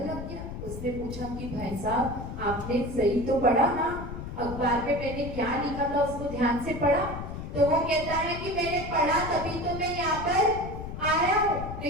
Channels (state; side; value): noise; left; rumble, 8 dB below the sound